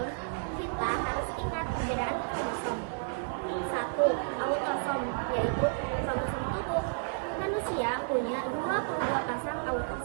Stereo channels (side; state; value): left; silent; digital silence